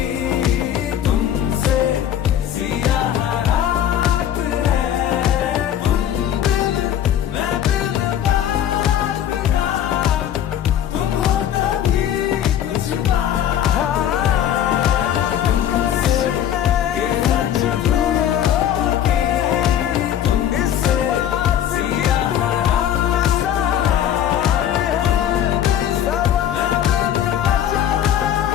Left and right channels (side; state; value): right; quieter; 10.4 dB